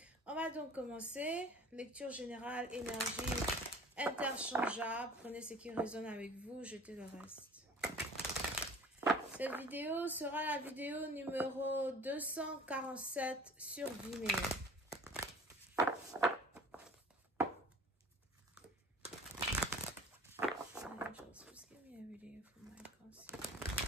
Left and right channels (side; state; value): both; normal; correlation 0.46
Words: On va donc commencer. Lecture générale, énergie interchangeable. Prenez ce qui résonne avec vous, jetez le reste. Cette vidéo sera la vidéo numéro 247 sur Vimeo. Angels, please give me a reading for my conscience.